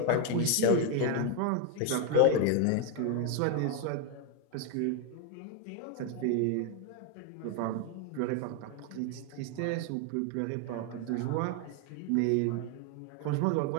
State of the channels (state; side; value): different; both; correlation 0.01